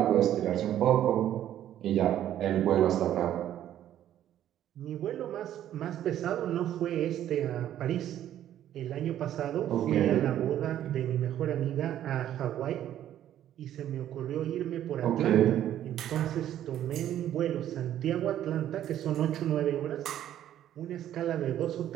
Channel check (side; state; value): left; quieter; 11.5 dB